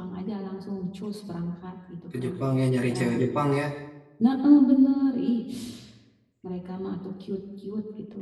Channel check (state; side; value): identical; both; correlation 1.00